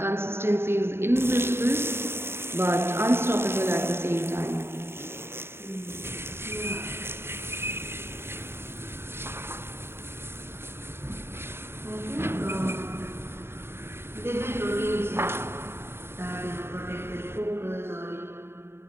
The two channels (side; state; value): left; late; 0.12 ms